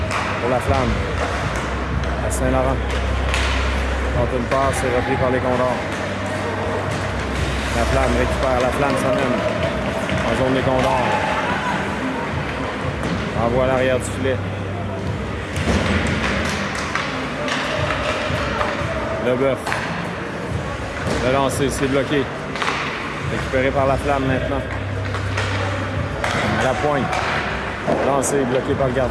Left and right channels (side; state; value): both; identical; correlation 1.00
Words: pour la Flamme. À Saint-Laurent. Quand une passe, c'est repris par les Condors. La Flamme récupère, la Flamme s'amène en zone des Condors. Envoie à l'arrière du filet. Leboeuf. Le lancer, c'est bloqué. Récupéré par la Flamme maintenant. À la pointe. Lancé, bloqué par le